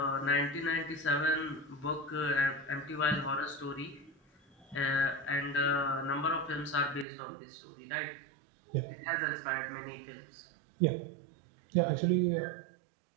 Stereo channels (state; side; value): drops out; left; at 7.1 s